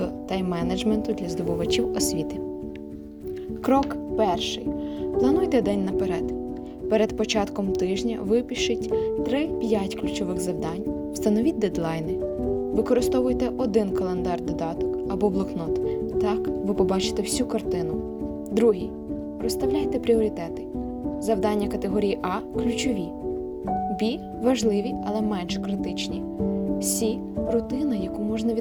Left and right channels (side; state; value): both; identical; correlation 1.00